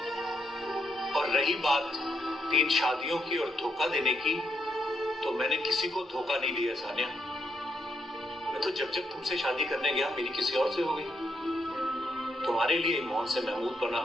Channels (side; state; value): both; normal; correlation 0.78